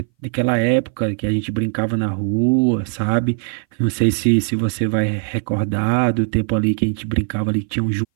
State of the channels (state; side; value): silent; left; 60 dB below the other